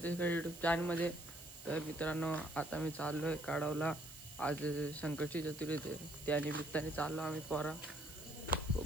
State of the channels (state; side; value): noise; right; hiss, 15 dB below the sound